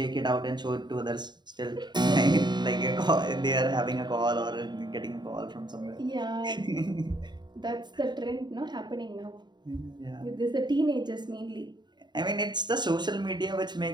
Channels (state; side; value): late; left; 0.21 ms